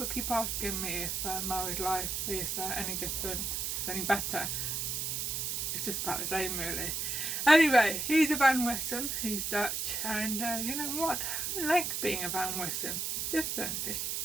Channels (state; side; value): noise; right; hiss, 1 dB below the sound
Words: keep asking me if married life is any different, any better. It's just about the same, really. Anyway, he's a Van Wessem, he's Dutch, and you know what? I like being a Van Wessem. It's different, it's